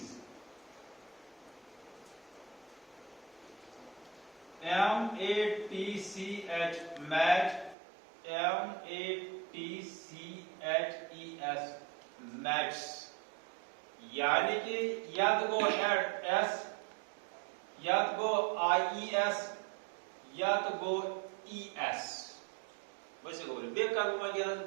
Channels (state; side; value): drops out; left; at 7.8 s